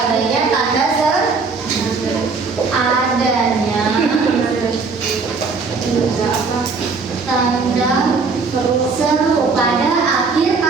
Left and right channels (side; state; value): left; quieter; 4.5 dB